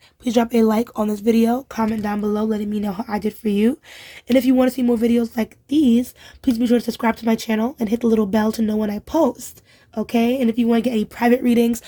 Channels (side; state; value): both; identical; correlation 1.00